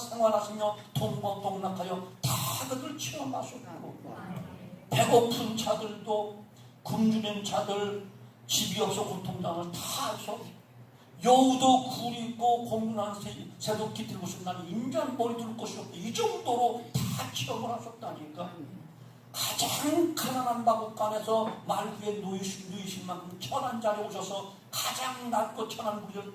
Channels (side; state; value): both; identical; correlation 1.00